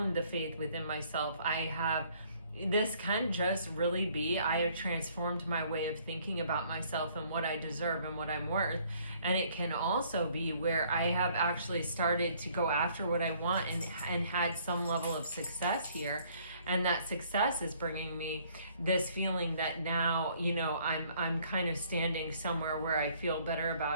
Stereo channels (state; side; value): inverted; both; correlation -0.61